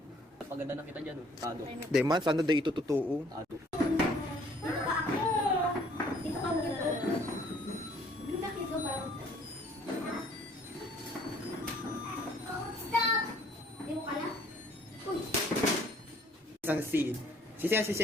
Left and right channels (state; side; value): normal; both; correlation 0.59